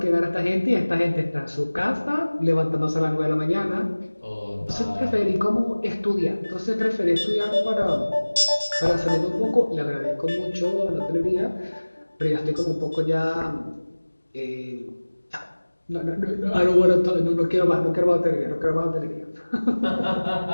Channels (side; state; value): both; inverted; correlation -1.00